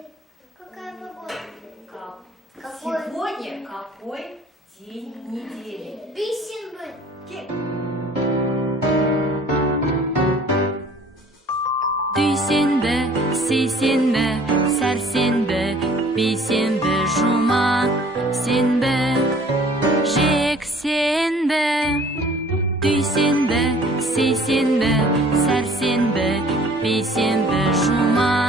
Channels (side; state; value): both; normal; correlation 0.52